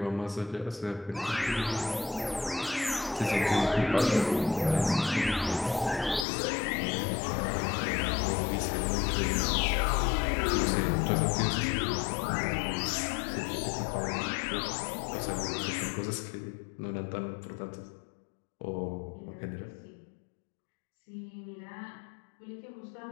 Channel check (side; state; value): right; drops out; at 6.2 s